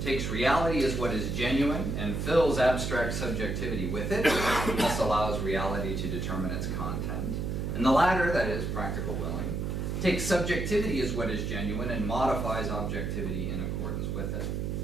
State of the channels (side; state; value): right; noise; hum, 2 dB below the sound